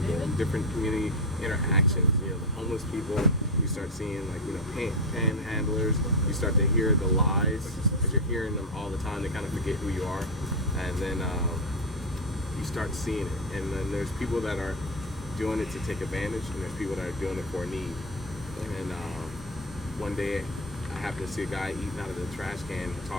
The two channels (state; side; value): normal; both; correlation 0.08